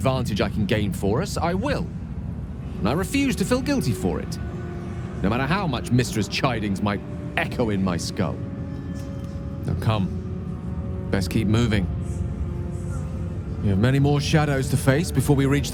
I can gain for us, I will. And I refuse to feel guilty for it. No matter how much Mistra's chidings might echo in my skull. Now come. Best keep moving. We have many more shadows to face before we reach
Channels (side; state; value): both; identical; correlation 1.00